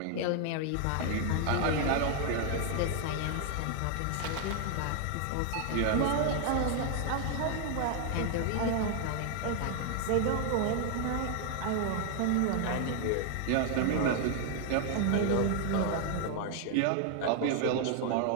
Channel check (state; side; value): different; both; correlation 0.00